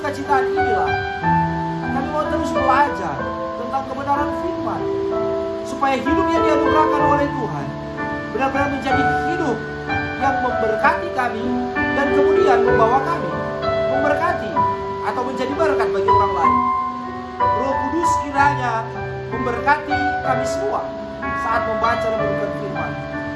inilah kami mau terus belajar tentang kebenaran firman, supaya hidup yang dianugerahkan oleh Tuhan benar-benar menjadi hidup yang memberkati kami dan kemudian membawa kami memberkati atau menjadi berkat bagi orang lain. Roh Kudus kiranya memberkati kami semua saat membaca dan merenungkan firman.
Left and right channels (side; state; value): both; identical; correlation 1.00